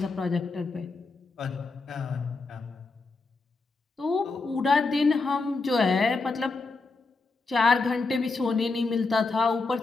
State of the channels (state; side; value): quieter; right; 3.8 dB